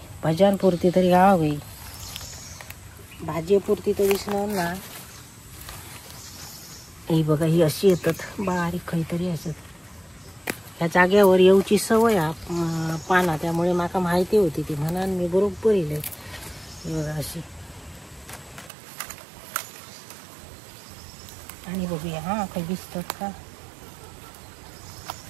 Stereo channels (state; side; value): drops out; left; at 18.7 s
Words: भज्यांपुरती तरी गावावी, भाजीपुरती तर दिसणार ना। ही बघा, ही अशी येतात बारीक काहीतरी असत। ह्या जाग्यावर येऊची सवय पाना, त्यामुळे माका माहिती होती ती, म्हणून मी बरोबर येईल। बघा अशी, आणि बघूया हा काही दिसतात का।